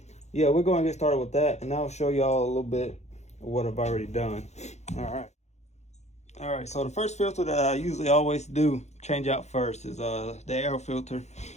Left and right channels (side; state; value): right; late; 0.33 ms